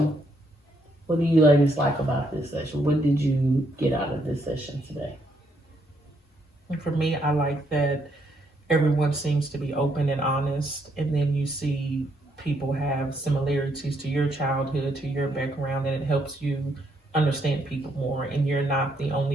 ladies like about this session? What did you get out of this session today? and for me, I like that everyone seems to be open and honest, and then you see people have similarities to your childhood, to your background, and it helps you understand people more, and you're not the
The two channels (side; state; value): both; normal; correlation 0.74